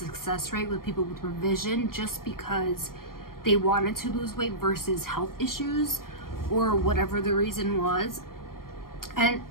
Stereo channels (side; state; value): right; late; 0.92 ms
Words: rate with people with revision just because they wanted to lose weight versus health issues or whatever the reason was. And